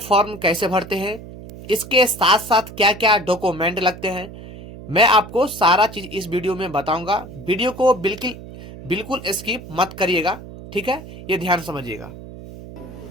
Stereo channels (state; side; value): noise; right; hum, 15 dB below the sound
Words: कैसे भरते हैं, इसके साथ साथ क्या क्या डॉक्यूमेंट लगते हैं, मैं आपको सारा चीज इस वीडियो में बताऊंगा। वीडियो को बिल्कुल बिल्कुल स्किप मत करिएगा, ठीक है, ये ध्यान समझिएगा।